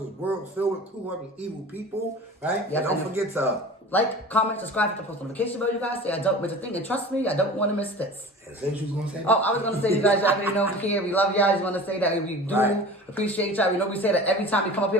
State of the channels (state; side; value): normal; both; correlation 0.38